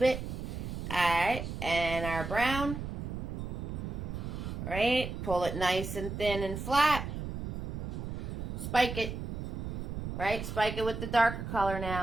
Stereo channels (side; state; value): right; noise; rumble, 5 dB below the sound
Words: Alright, and our brown. Right, pull it nice and thin and flat. Spike it. Right, spike it with the darker color